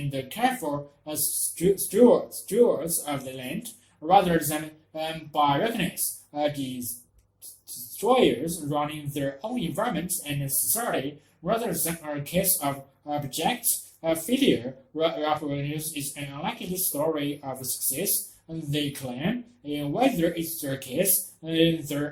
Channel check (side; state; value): both; identical; correlation 1.00